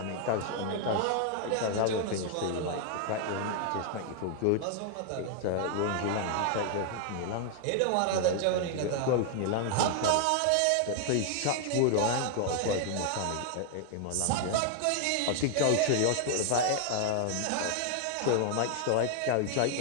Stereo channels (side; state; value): both; different; correlation 0.00